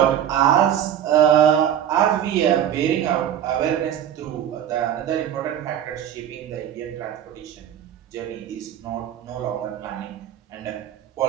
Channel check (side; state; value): left; quieter; 10.1 dB